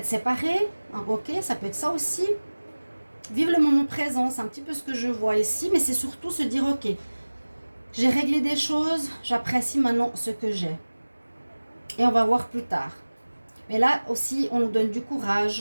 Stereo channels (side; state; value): both; inverted; correlation -1.00